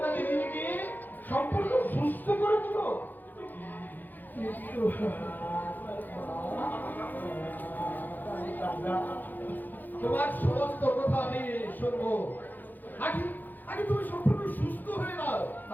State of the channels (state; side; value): late; right; 0.086 ms